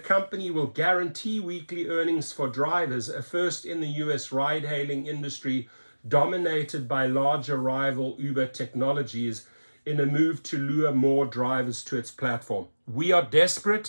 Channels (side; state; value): both; inverted; correlation -1.00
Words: will guarantee weekly earnings for drivers, a first in the US ride-hailing industry dominated by larger rival Uber technologies, in a move to lure more drivers to its platform. We are